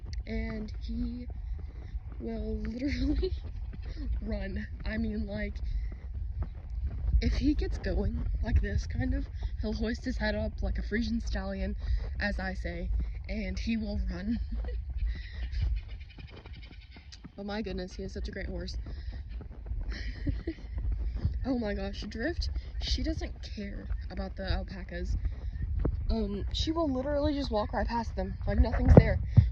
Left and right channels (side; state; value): both; identical; correlation 1.00